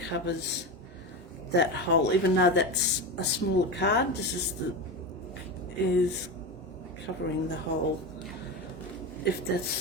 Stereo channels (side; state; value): both; normal; correlation 0.20